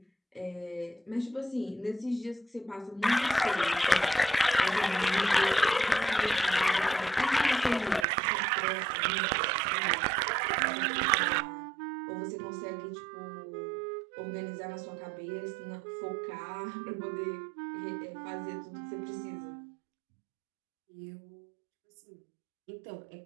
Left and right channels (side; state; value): left; drops out; at 8.1 s